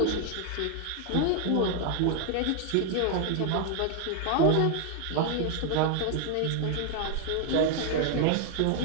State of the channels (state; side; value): different; both; correlation 0.00